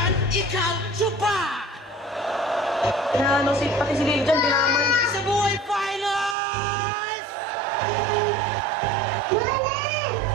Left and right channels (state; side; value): drops out; left; at 6.4 s